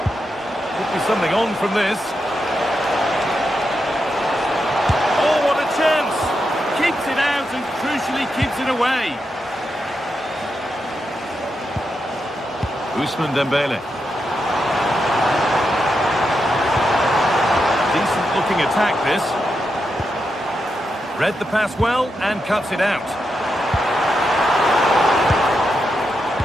Could be something on from this. Oh, what a chance! Keeps it out and crucially keeps it away. Ousmane Dembele. Decent looking attack this. Read the pass well and cuts it out.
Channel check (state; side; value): normal; both; correlation 0.86